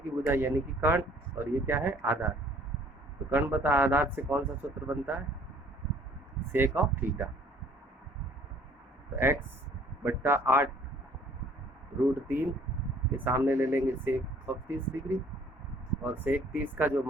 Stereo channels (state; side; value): normal; both; correlation 0.57